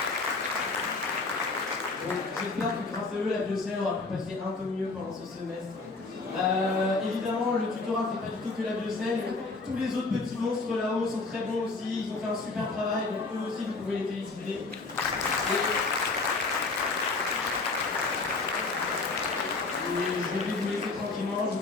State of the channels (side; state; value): right; quieter; 3.7 dB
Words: Donc j'espère que grâce à eux, la Bruxelles aura pu passer un peu mieux pendant ce semestre. Évidemment, le tutorat fait pas du tout que la Bruxelles. Tous les autres petits monstres là-haut sont très bons aussi, ils ont fait un super travail, donc eux aussi vous pouvez les féliciter. Et je vais vous laisser tranquillement, je